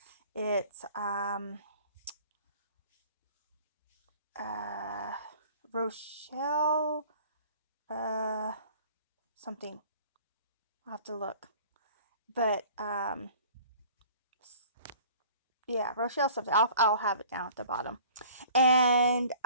It's Rochelle something. I'll have to look. But yeah, Rochelle something. I'll have it down at the bottom. And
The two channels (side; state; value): both; inverted; correlation -0.49